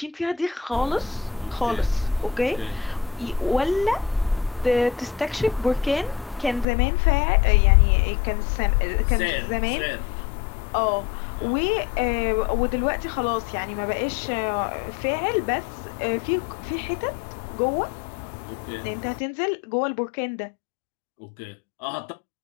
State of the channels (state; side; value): drops out; right; at 6.7 s